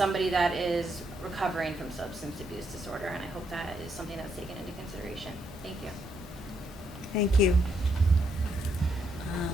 that is recovering from substance abuse disorder. And I hope that is something that's taken into consideration. Thank you. Thank you.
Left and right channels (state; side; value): normal; both; correlation 0.76